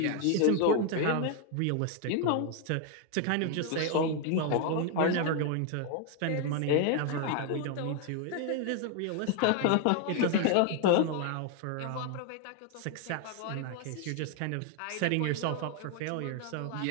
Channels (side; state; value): both; different; correlation 0.01